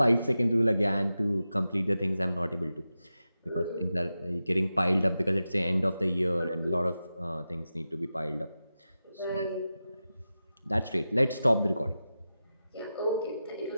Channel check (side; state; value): both; inverted; correlation -0.92